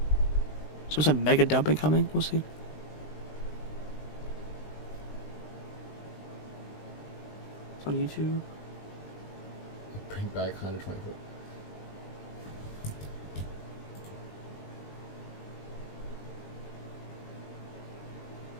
Some mega dumping coming. We'll see. It's on YouTube. Bring Back 120 foot.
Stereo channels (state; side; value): late; right; 20 ms